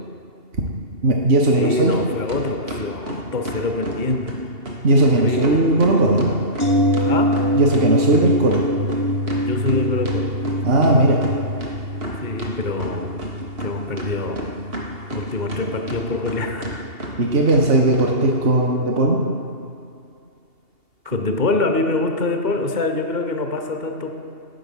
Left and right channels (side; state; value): left; late; 2.8 ms